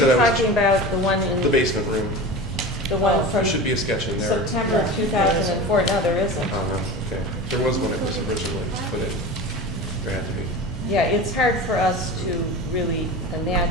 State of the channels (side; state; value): both; normal; correlation 0.31